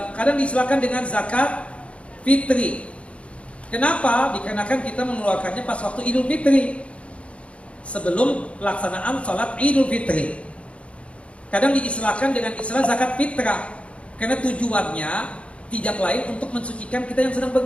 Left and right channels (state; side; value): late; right; 0.061 ms